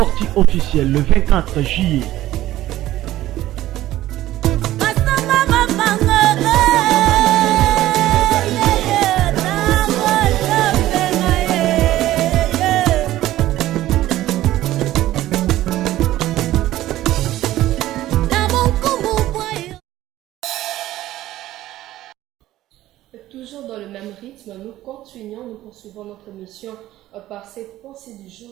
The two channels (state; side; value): quieter; left; 14.8 dB